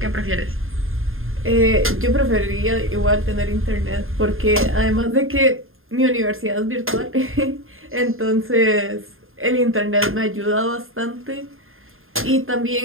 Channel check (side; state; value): left; late; 0.60 ms